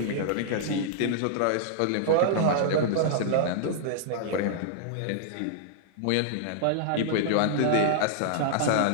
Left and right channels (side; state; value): both; different; correlation -0.02